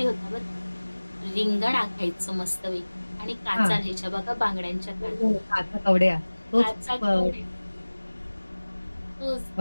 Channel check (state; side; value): inverted; both; correlation -1.00